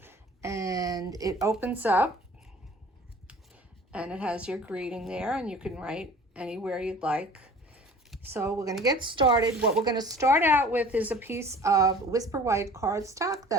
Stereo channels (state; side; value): normal; both; correlation 0.46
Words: and it opens up, and it has your greeting there, and you can write anywhere you'd like. So we're going to get started. What we're going to start out with is a piece of Whisper White cardstock